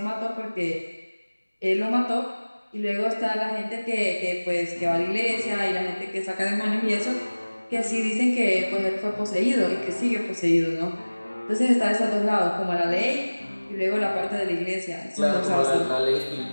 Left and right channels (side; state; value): both; inverted; correlation -1.00